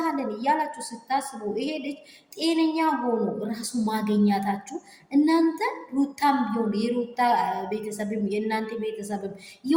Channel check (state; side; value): identical; both; correlation 1.00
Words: እያላችሁ ስታስቡ ይሄ ልጅ ጤነኛ ሆኖ ራሱ ማገኛታችሁ እናንተ ሩታም ቢሆን የሩታ ቤተሰብም የእናንተ ቤተሰብም